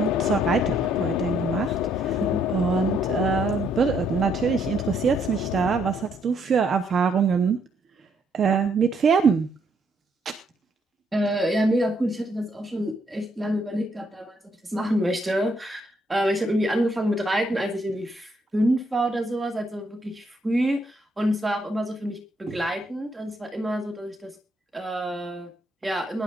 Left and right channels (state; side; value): normal; both; correlation 0.71